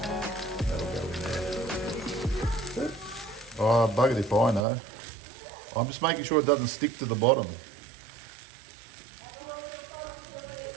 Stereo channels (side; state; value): left; drops out; at 4.6 s